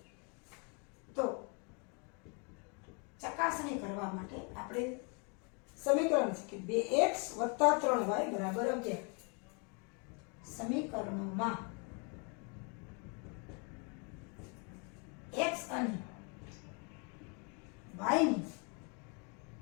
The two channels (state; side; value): quieter; right; 35.1 dB